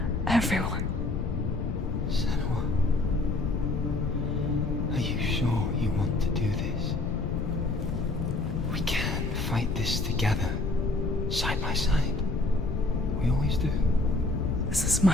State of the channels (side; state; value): left; noise; rumble, 2 dB below the sound